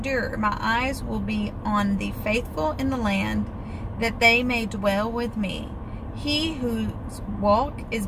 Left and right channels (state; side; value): identical; both; correlation 1.00